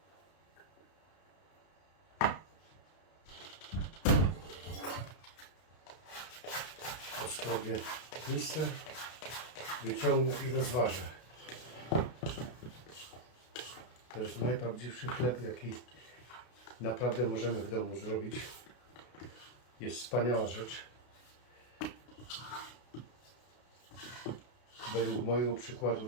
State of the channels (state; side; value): late; right; 32 ms